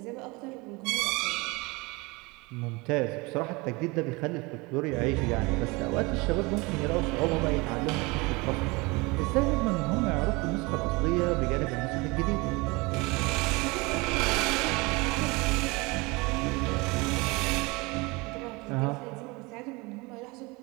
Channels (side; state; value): left; quieter; 25.2 dB